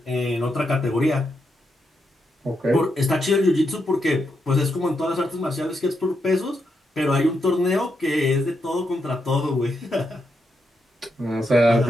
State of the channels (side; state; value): both; normal; correlation 0.82